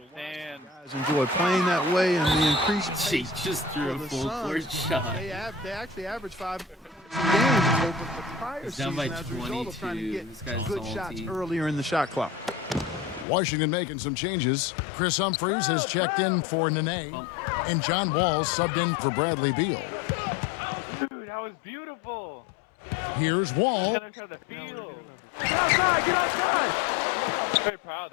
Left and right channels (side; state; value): right; drops out; at 13.2 s